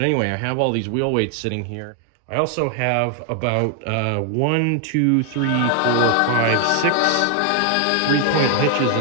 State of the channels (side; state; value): both; different; correlation 0.00